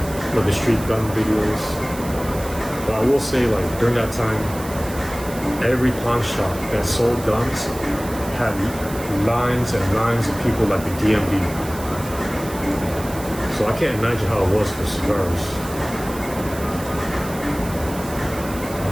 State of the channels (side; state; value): right; noise; hiss, 14 dB below the sound